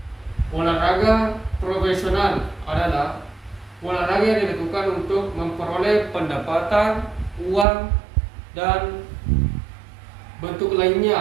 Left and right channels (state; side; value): drops out; left; at 7.7 s